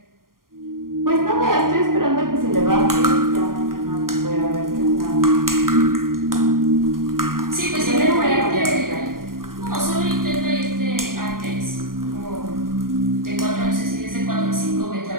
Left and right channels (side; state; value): left; late; 0.91 ms